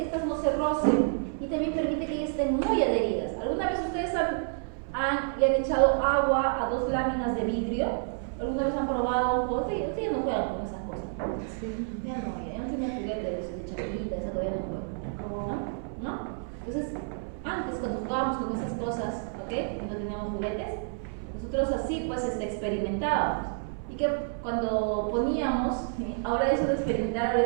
estas no se rocen y también permite que ellas estén muy adheridas. ¿Alguna vez ustedes le han echado agua a dos láminas de vidrio? ¿Alguna vez han probado un juego? Ustedes ya no juegan con esas cosas. Sí. Ya no tienen juguetes de chavalita, esa todavía no juegan. ¿No? Entonces, antes cuando jugábamos con esas cosas, ¿ok? Y no teníamos juguetes, nosotros así pues experimentábamos. Y que cuando poníamos, ahora eso de experimentar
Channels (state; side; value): silent; left; 58 dB below the other